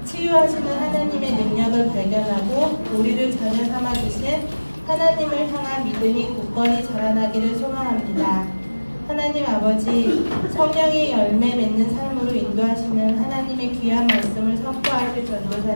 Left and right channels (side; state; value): both; inverted; correlation -1.00